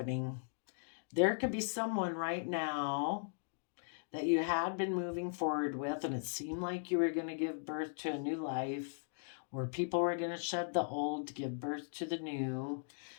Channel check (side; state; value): right; silent; digital silence